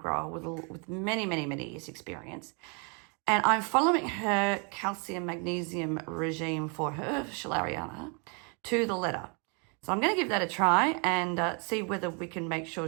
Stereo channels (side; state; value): left; quieter; 35.5 dB